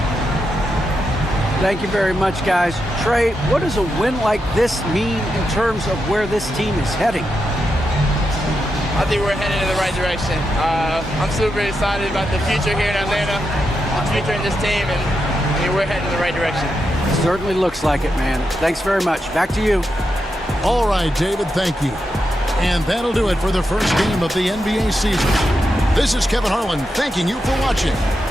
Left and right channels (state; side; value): normal; both; correlation 0.86